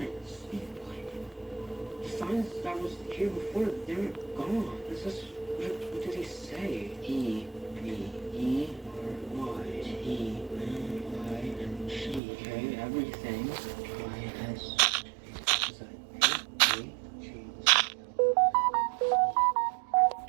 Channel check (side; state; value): left; drops out; at 12.2 s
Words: The signs that was here before, they're gone. Is this what did he say? E-B-E-R-Y. T-E-M-I-N-G. Okay, everything. I-S. Is that A-G?